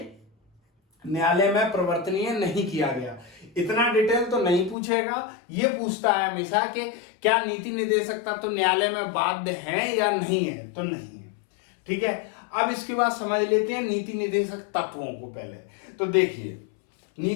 न्यायालय में परिवर्तनीय नहीं किया गया। इतना डिटेल तो नहीं पूछेगा, ये पूछता है हमेशा कि क्या नीति निदेशक तत्व न्यायालय में बाध्य हैं या नहीं है? तो नहीं है। ठीक है, अब इसके बाद समझ लेते हैं नीति निदेशक तत्वों को। पहले तो देखिए,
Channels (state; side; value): drops out; right; at 4.8 s